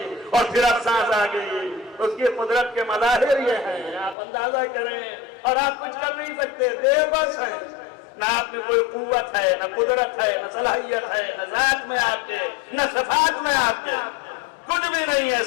اور پھر اب سانس آ گئی. اس کی قدرت کے مظاہر یہ ہیں، آپ اندازہ کریں. اور آپ کچھ کر نہیں سکتے، بے بس ہیں. نہ آپ میں کوئی قوت ہے، نہ قدرت ہے، نہ صلاحیت ہے، نہ ذات میں آپ کے، نہ صفات میں آپ کے، کچھ بھی نہیں ہے.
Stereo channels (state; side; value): drops out; right; at 4.2 s